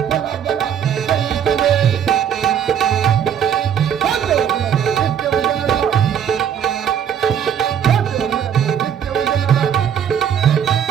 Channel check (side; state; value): left; quieter; 8.7 dB